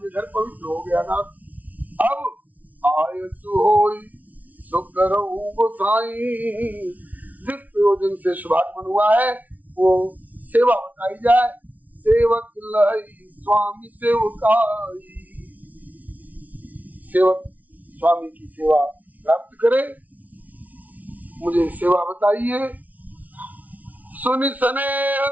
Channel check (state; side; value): late; left; 0.074 ms